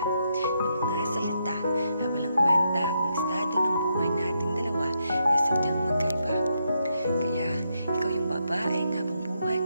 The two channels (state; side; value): inverted; both; correlation -0.80